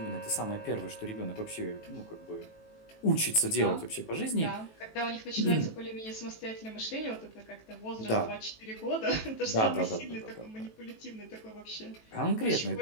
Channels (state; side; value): late; right; 18 ms